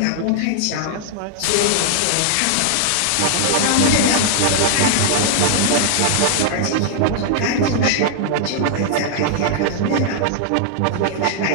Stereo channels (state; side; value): different; both; correlation 0.00